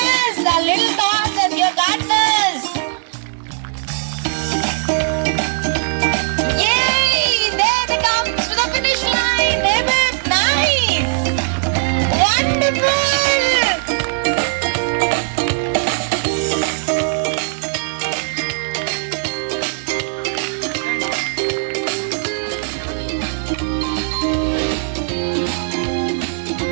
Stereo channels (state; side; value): silent; left; 67 dB below the other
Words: our little dogs and your gardeners. Yay! There we